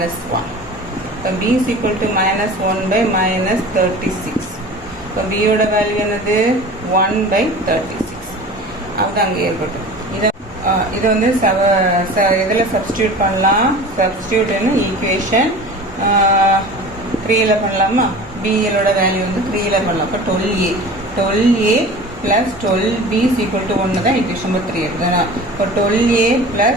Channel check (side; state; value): both; normal; correlation 0.38